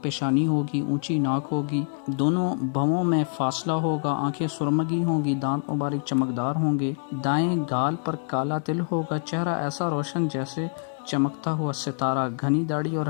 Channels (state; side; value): silent; right; digital silence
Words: پیشانی ہوگی، اونچی ناک ہوگی، دونوں بھووں میں فاصلہ ہوگا، آنکھیں سرمگی ہوں گی، دانت مبارک چمکدار ہوں گے، دائیں گال پر کالا تل ہوگا، چہرہ ایسا روشن جیسے چمکتا ہوا ستارہ، گھنی داڑھی اور